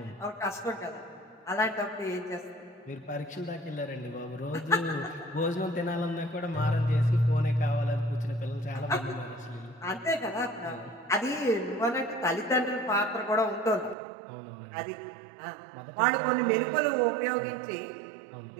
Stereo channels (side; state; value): left; drops out; at 14.0 s